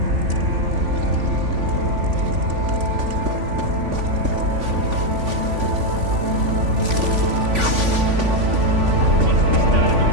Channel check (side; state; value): left; late; 3.5 ms